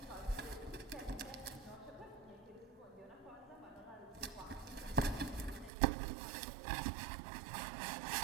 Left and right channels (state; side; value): drops out; left; at 5.7 s